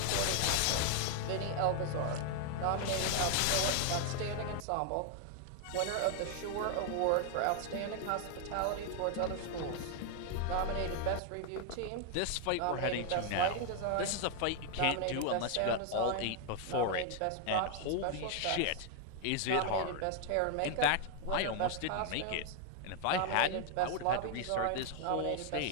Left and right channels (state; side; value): different; both; correlation 0.00